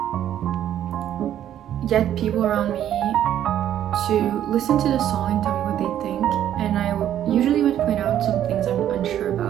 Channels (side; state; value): left; quieter; 11.0 dB